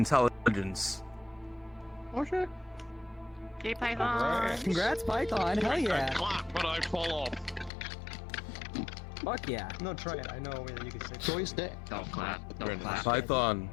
Okay. Hey, Python. Congrats, Python. Hell yeah. Clap when I fall off. Fuck yeah. No, try it. I know a way that you can say Joystick. Don't clap. Don't clap. Python,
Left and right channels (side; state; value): right; drops out; at 7.7 s